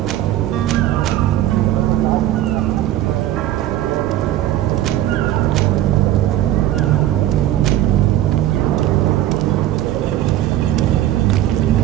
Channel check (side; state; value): left; quieter; 13.2 dB